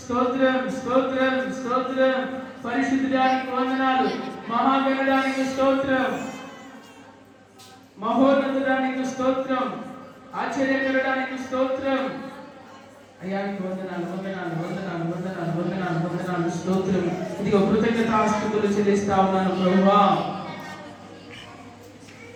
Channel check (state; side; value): identical; both; correlation 1.00